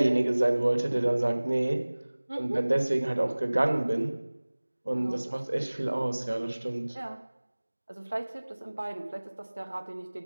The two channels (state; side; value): inverted; both; correlation -1.00